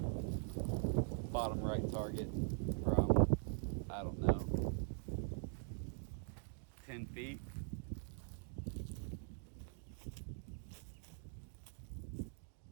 Bottom right target from, I don't know, 10 feet.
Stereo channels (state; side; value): silent; left; digital silence